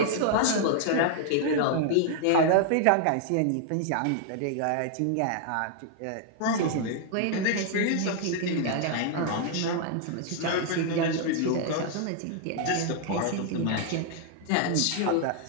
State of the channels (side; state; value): both; different; correlation 0.00